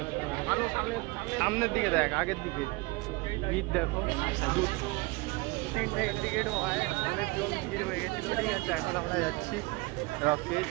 সামনের দিকে দেখ, আগের দিকে ভিড় দেখো, তিনটে ইন্ডিকেট হওয়ায় অনেকজন ভিড় হয়ে গেছিল। ঠিক আছে, এখন আমরা যাচ্ছি রকেট।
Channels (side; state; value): left; quieter; 24.8 dB